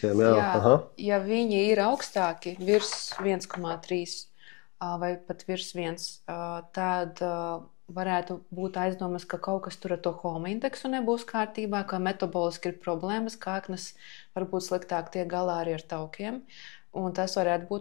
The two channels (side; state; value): right; quieter; 29.2 dB